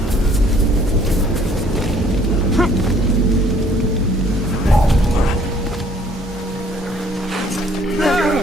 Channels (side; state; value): both; normal; correlation 0.60